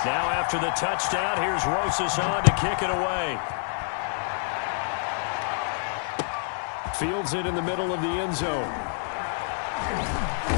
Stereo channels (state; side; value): silent; right; digital silence